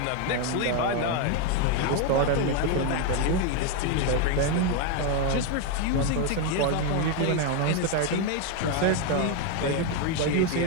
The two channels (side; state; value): both; different; correlation 0.02